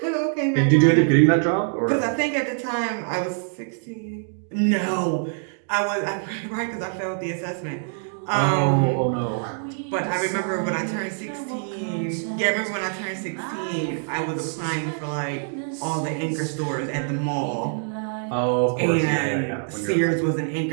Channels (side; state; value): left; silent; digital silence